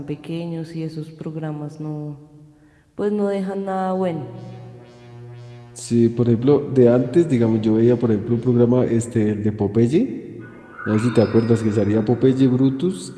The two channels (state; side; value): identical; both; correlation 1.00